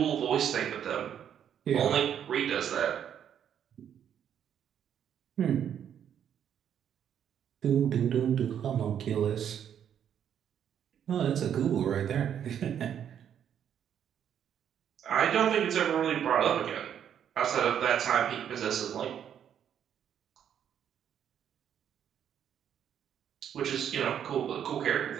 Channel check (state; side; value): quieter; left; 9.1 dB